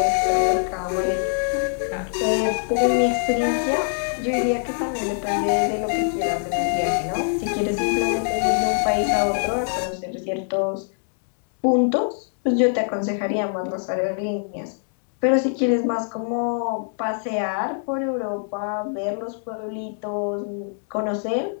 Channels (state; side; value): silent; right; digital silence